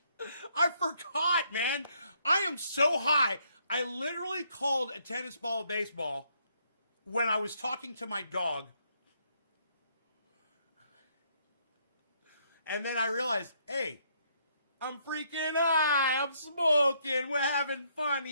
I forgot, man. I am so high. I literally called a tennis ball a baseball when I was talking to my dog. And then I realized, hey, I'm freaking high. I'm smoking. We're having fun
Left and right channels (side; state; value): both; inverted; correlation -0.71